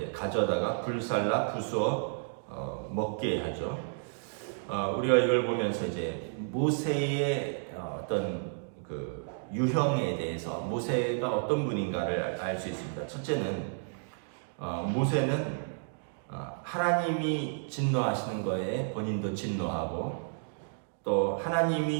가져다가 불살라 부수어 먹게 하죠. 우리가 이걸 보면서 이제 모세의 어떤 그 유형에 대해서 모세가 어떤 분인가를 알 수 있습니다. 첫째는 모세는 하나님이 진노하시는 거에 본인도 진노하고 또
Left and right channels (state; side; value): silent; left; digital silence